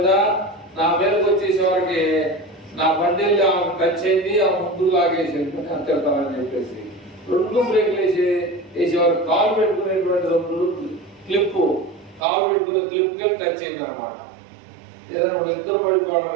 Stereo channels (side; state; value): left; drops out; at 12.2 s